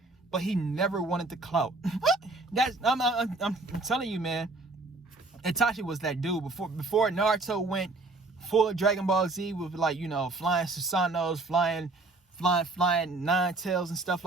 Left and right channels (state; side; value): quieter; left; 3.2 dB